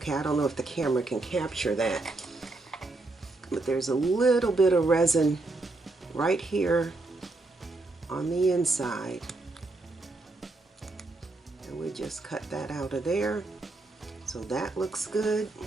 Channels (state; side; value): quieter; left; 3.2 dB